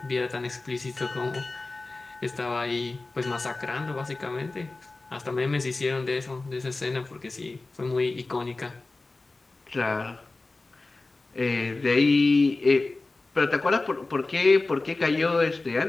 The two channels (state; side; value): quieter; right; 3.3 dB